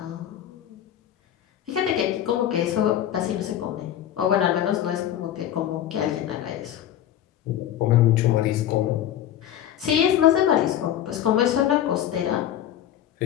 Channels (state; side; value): quieter; right; 11.2 dB